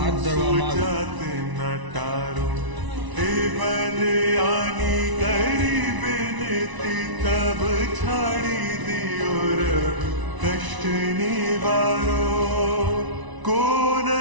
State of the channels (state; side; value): late; left; 1.0 ms